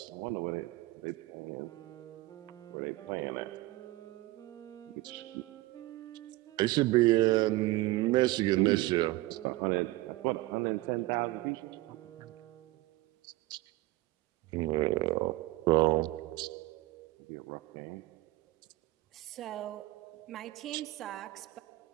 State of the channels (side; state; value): left; quieter; 19.4 dB